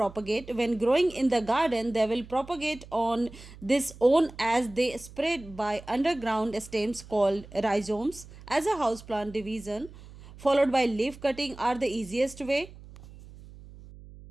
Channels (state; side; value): noise; right; hum, 18 dB below the sound